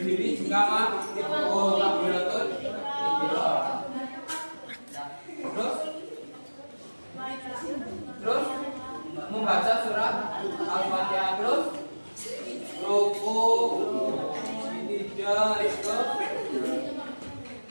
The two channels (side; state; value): both; inverted; correlation -1.00